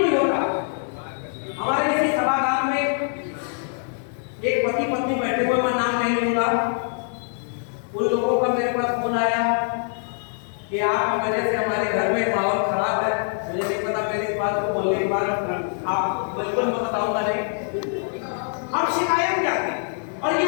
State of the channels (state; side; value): silent; right; 63 dB below the other